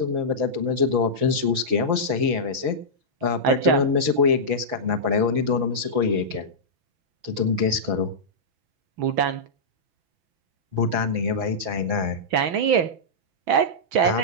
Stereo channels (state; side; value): late; left; 5.3 ms